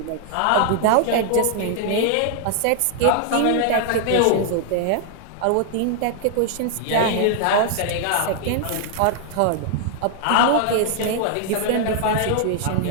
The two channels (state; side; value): different; both; correlation 0.00